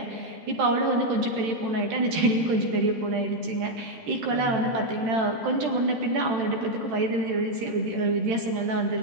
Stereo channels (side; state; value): left; late; 13 ms